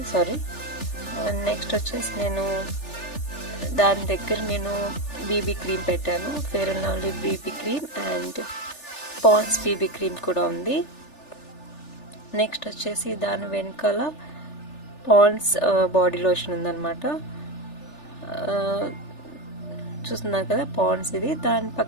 సారీ. అండ్ నెక్స్ట్ వచ్చేసి నేను దాని దగ్గర నేను బీబీ క్రీమ్ పెట్టాను, fair and lovely BB cream and Pond's BB cream కూడా ఉంది. నెక్స్ట్ వచ్చేసి దాని వెనకాల పాండ్స్ బాడీ లోషన్ ఉందన్నమాట, చూస్తున్నారు కదా పాండ్స్ ఇది. దాని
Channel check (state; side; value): late; right; 3.4 ms